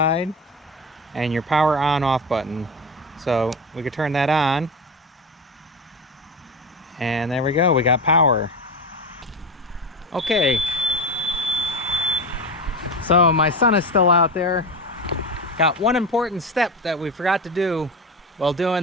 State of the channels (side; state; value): both; normal; correlation 0.22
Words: and your power on off button. So we could turn that on, and there we go, we got power. Okay, so my son is still out there. Got one important step that we forgot to do while